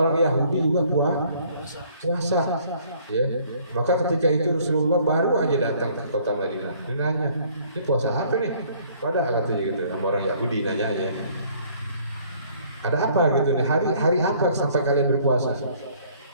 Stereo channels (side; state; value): both; inverted; correlation -0.59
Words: Yahudi juga puasa. Ya. Maka ketika itu Rasulullah baru aja datang ke kota Madinah. Dia nanya, ini puasa apa nih? Pada katanya gitu, sama orang Yahudi nanyanya. Ada apa gitu nih? Hari apa sampai kalian berpuasa?